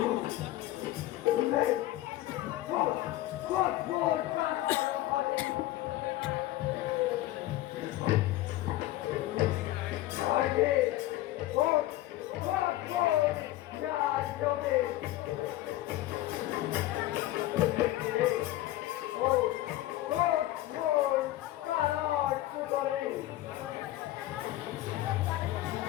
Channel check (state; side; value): quieter; right; 15.7 dB